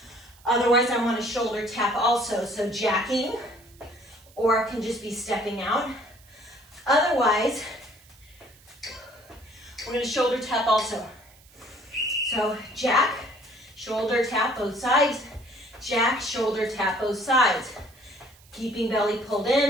Otherwise, I want a shoulder tap also. So jacking, or it can just be stepping out. Otherwise, we're gonna shoulder tap also. So jack, shoulder tap both sides. Jack, shoulder tap both sides. Keeping belly pulled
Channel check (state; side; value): noise; right; hiss, 27 dB below the sound